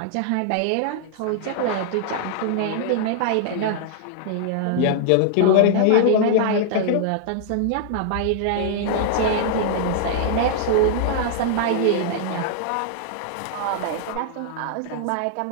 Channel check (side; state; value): both; different; correlation -0.01